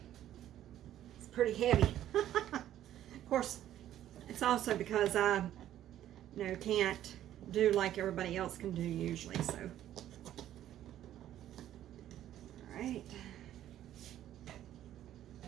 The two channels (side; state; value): left; quieter; 12.1 dB